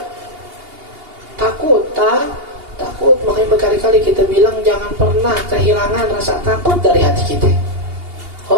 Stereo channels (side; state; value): left; late; 2.8 ms